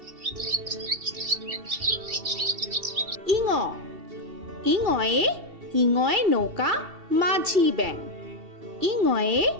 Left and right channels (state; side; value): late; left; 2.7 ms